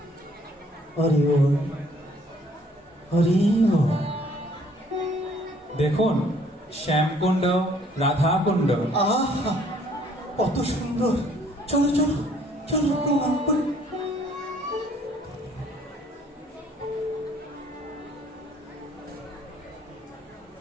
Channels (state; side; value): normal; both; correlation 0.60